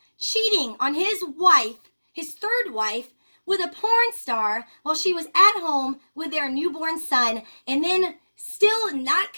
cheating on his wife, his third wife, with a porn star while she was at home with their newborn son. And then still not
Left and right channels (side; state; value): both; inverted; correlation -1.00